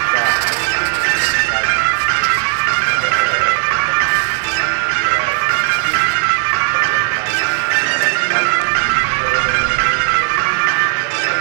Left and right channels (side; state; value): left; silent; digital silence